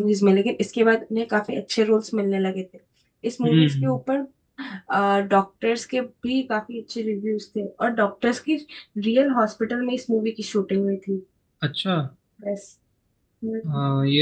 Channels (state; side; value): identical; both; correlation 1.00